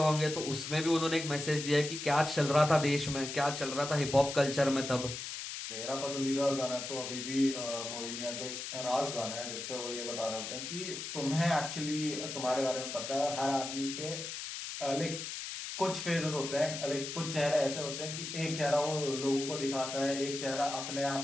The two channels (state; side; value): noise; left; hiss, 6 dB below the sound